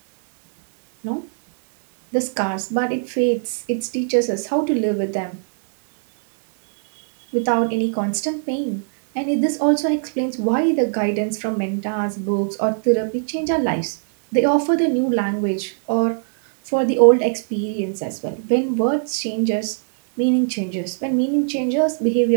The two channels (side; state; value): left; silent; digital silence